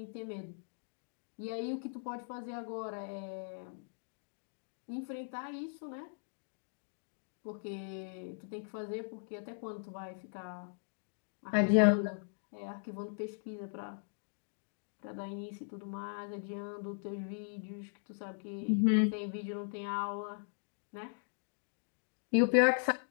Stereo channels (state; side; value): silent; right; digital silence